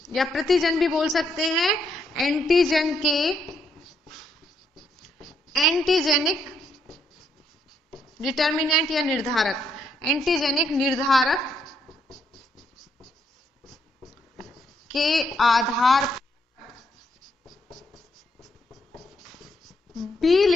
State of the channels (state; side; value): normal; both; correlation 0.75